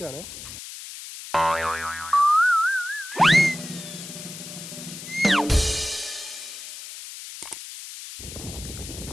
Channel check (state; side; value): noise; left; hiss, 11 dB below the sound